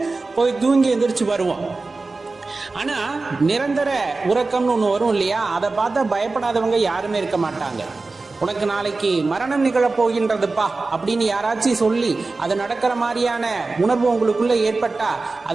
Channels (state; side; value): quieter; left; 3.6 dB